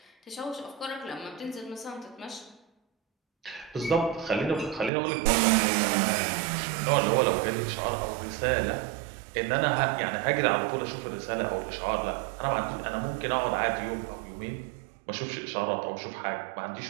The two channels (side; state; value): left; drops out; at 4.9 s